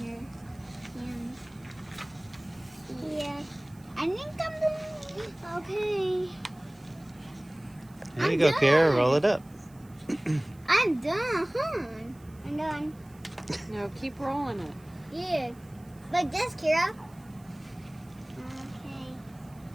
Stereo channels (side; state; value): right; noise; hiss, 28 dB below the sound